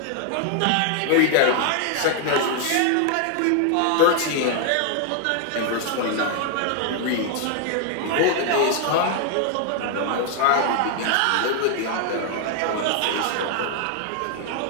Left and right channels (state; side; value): different; both; correlation 0.00